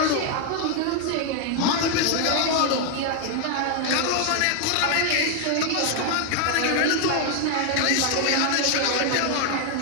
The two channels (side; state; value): both; different; correlation 0.00